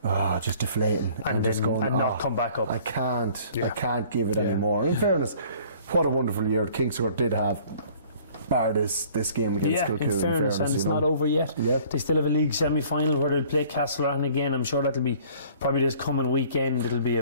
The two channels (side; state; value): both; inverted; correlation -0.53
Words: just deflating and just going, and not come back up. I can't give it anymore. In fairness, what a wonderful year Kings Court did have, bar this game against Kilcoo. In fairness, and it's not over yet. Yep. They still have a league semi-final where they'll play Castlereagh again. I'm sure that'll be probably this coming weekend. It'll be